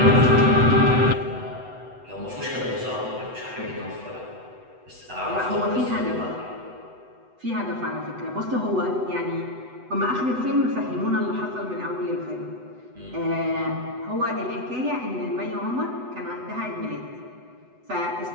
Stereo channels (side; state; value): left; late; 8.0 ms